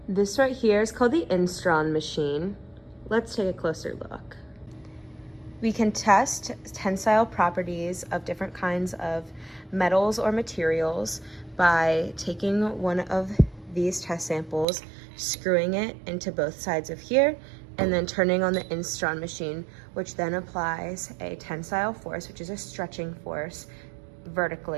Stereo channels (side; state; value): left; drops out; at 14.7 s